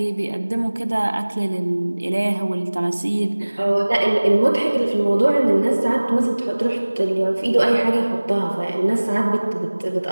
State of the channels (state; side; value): inverted; both; correlation -1.00